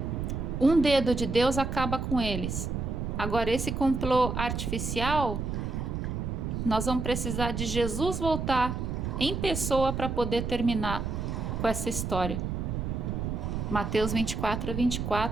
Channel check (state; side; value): noise; right; rumble, 3 dB below the sound